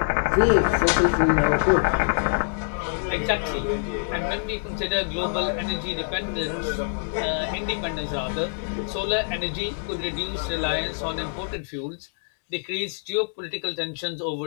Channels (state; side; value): silent; right; digital silence